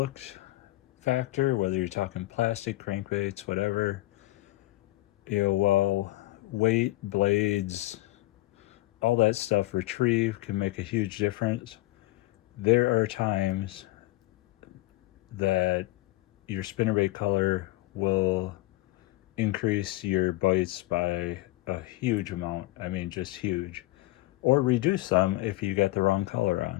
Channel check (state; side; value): quieter; right; 18.7 dB